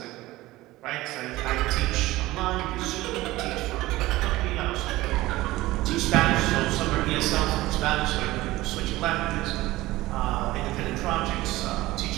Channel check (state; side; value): quieter; left; 18.0 dB